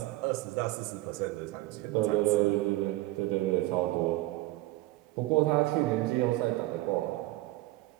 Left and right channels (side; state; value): left; quieter; 18.7 dB